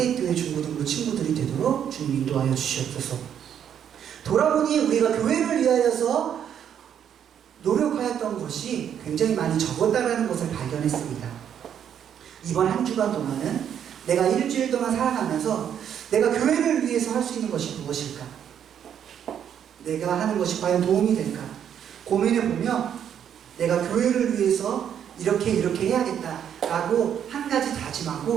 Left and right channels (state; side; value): quieter; left; 9.0 dB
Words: 중고등부 친구들이 되도록 주님 인도하여 주시옵소서. 돌아보니 우리가 교회를 위하여서 노력하였던 것이 굉장히 많이 적었다는 것을 발견했습니다. 이번 한 주간 동안은 내가 일주일 동안 살아가면서 내가 교회를 위해서 할 수 있는 것이 무엇일까? 내가 하는 것이 과연 도움이 될까? 고민해보며 내가 교회를 위해서 이렇게 해야겠다라고 한 가지